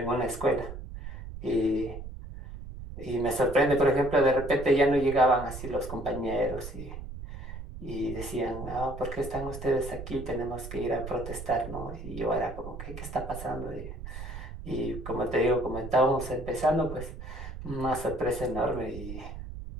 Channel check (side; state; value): right; noise; rumble, 10 dB below the sound